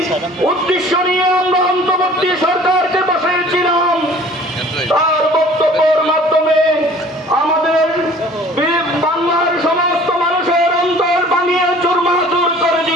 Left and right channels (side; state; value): both; normal; correlation 0.49